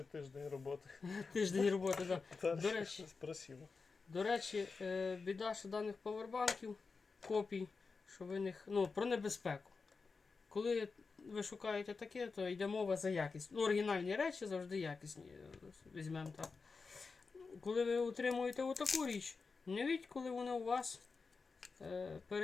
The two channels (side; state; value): right; quieter; 4.6 dB